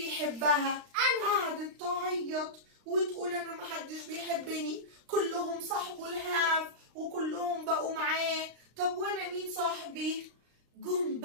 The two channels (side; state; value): left; late; 35 ms